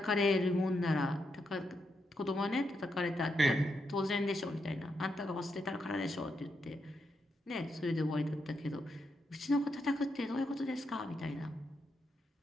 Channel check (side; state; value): both; normal; correlation 0.82